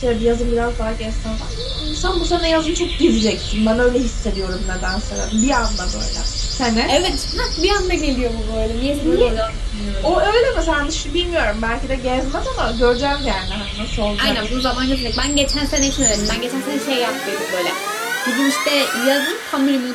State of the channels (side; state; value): both; identical; correlation 1.00